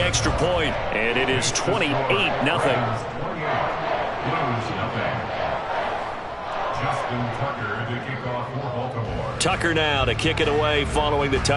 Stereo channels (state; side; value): identical; both; correlation 1.00